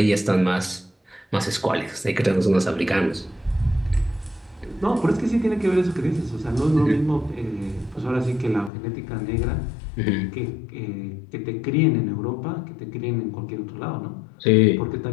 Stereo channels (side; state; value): right; drops out; at 8.7 s